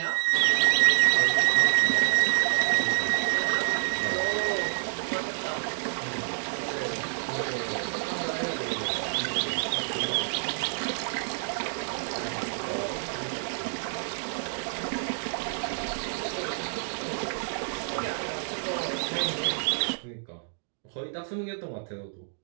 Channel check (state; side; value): silent; left; digital silence